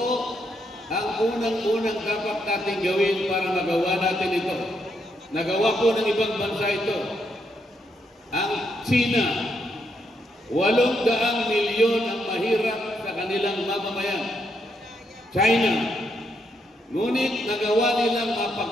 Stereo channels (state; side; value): normal; both; correlation 0.78